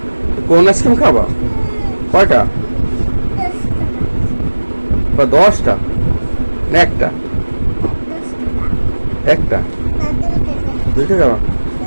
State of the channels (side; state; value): both; inverted; correlation -1.00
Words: কোন আইসক্রিম খাবা কয়টা বা 10টা না একটা একটা 2টা খাবা